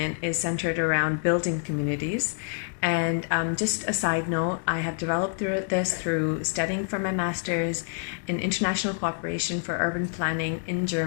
is centered around building communities. And just a side note, I have developed this through studying for my master's in international cooperation for urban planning in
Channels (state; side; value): silent; right; 60 dB below the other